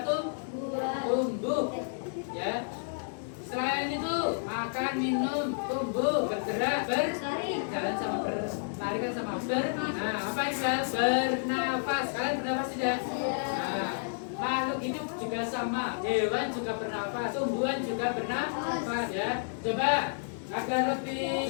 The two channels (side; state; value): right; silent; digital silence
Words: tumbuh. Ya. Selain itu, makan, minum, tumbuh, bergerak, berjalan sama berlari kan sama nah, apa itu? Bernafas. Kalian bernafas tidak? Nah, makhluk hidup juga sama. Hewan juga bernafas, tumbuhan juga bernafas ya. Coba agar